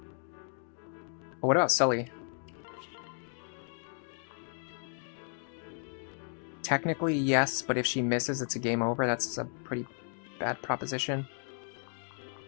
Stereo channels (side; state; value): right; silent; 55 dB below the other